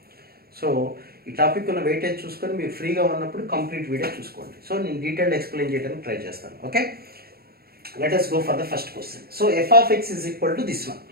సో ఈ టాపిక్ ఉన్న వెయిటేజ్ చూసుకొని మీరు ఫ్రీగా ఉన్నప్పుడు కంప్లీట్ వీడియో చూసుకోండి. సో నేను డీటెయిల్డ్ ఎక్స్ప్లెయిన్ చేయడానికి ట్రై చేస్తాను. Okay, let us go for the first question. So f of x is equal to this one.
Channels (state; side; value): late; left; 0.45 ms